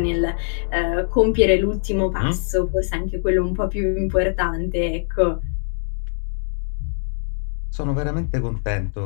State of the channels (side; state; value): right; silent; digital silence